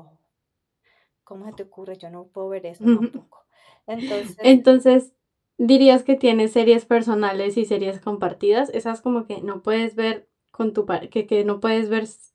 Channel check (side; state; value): both; identical; correlation 1.00